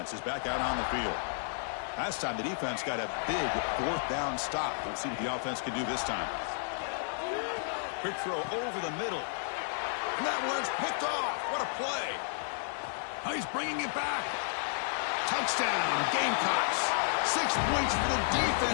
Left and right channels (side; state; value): right; silent; digital silence